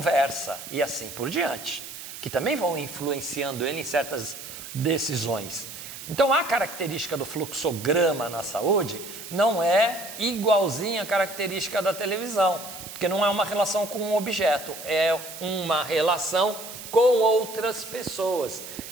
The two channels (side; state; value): right; noise; hiss, 12 dB below the sound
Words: e assim por diante, que também vão influenciando ele em certas decisões. Então, a característica do fluxograma na saúde não é igualzinha à característica da televisão, porque não é uma relação com um objeto, é uma relação com outras pessoas.